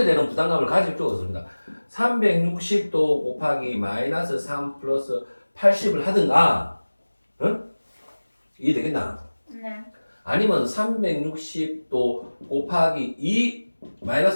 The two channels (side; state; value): both; inverted; correlation -1.00